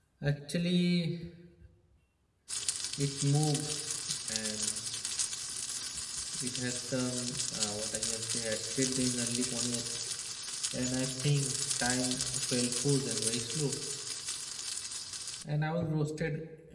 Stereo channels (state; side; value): identical; both; correlation 1.00